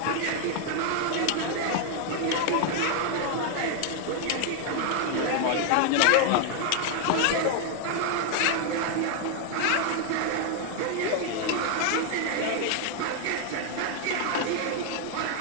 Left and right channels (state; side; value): different; both; correlation 0.00